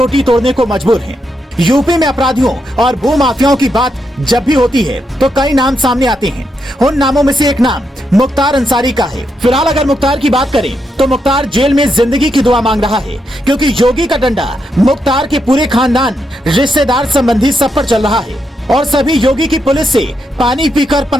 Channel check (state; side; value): normal; both; correlation 0.82